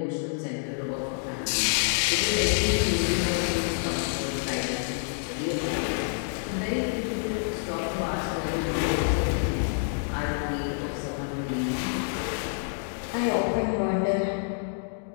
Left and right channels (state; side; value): silent; right; digital silence